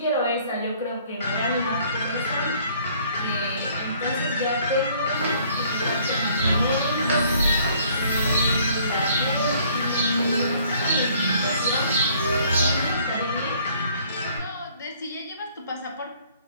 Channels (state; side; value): inverted; both; correlation -0.60